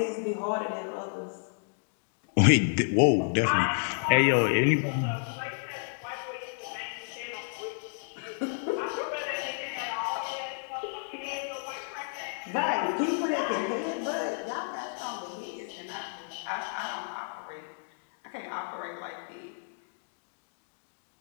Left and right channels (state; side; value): silent; right; digital silence